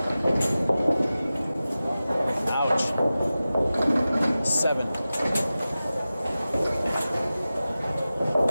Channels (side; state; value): both; inverted; correlation -0.95